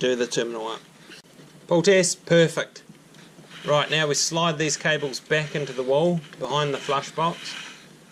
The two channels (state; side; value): identical; both; correlation 1.00